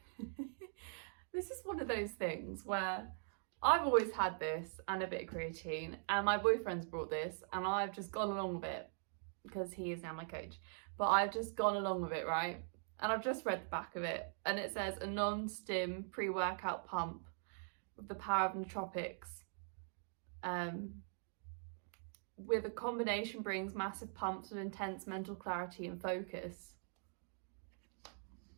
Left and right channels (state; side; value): silent; left; digital silence